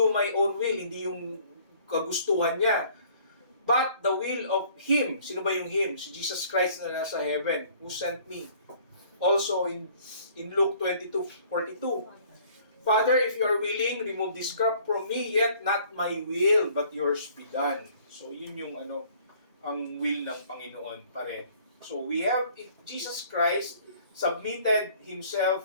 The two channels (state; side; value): inverted; both; correlation -0.56